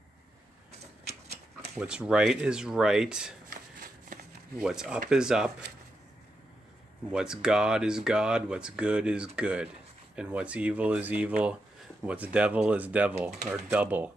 What's right is right. What's up is up. What's God is God. What's good is good. And what's evil is evil. What's devil is devil, or double.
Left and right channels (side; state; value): both; normal; correlation 0.85